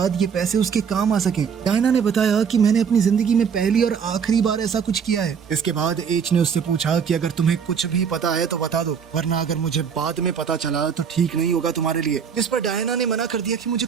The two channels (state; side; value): quieter; left; 6.8 dB